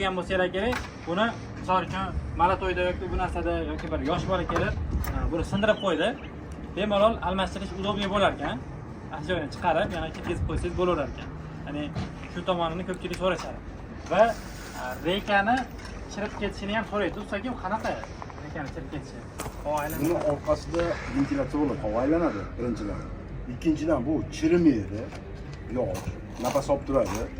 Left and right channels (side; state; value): both; identical; correlation 1.00